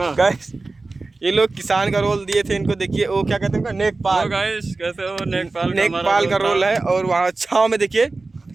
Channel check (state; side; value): quieter; left; 3.5 dB